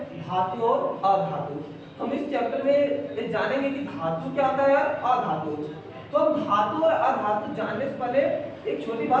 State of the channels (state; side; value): identical; both; correlation 1.00